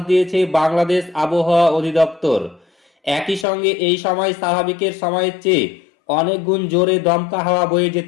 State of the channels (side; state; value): right; drops out; at 3.5 s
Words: দিয়েছে বাংলাদেশ আবহাওয়া অধিদপ্তর। একই সঙ্গে এই সময় স্বাভাবিকের সময়ের চেয়ে অনেক গুণ জোরে দমকা হাওয়া বয়ে